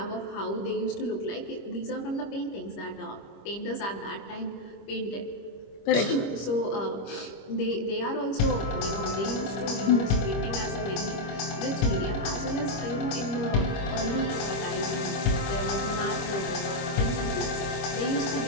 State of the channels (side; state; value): right; late; 25 ms